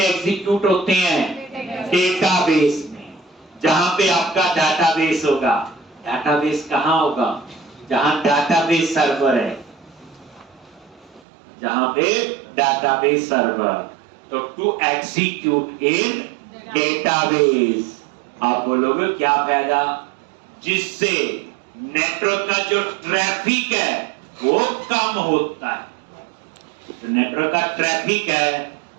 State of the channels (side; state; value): left; drops out; at 11.2 s